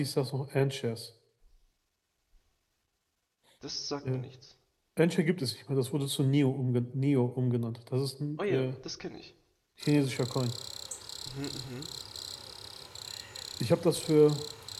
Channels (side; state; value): both; identical; correlation 1.00